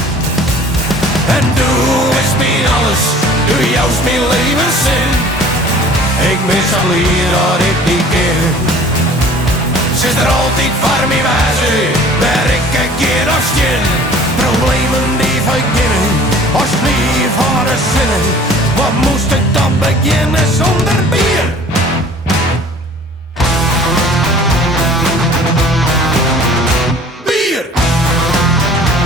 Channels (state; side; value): normal; both; correlation 0.49